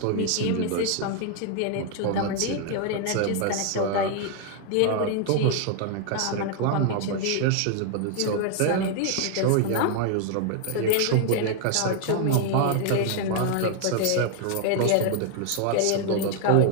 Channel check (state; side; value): different; both; correlation 0.00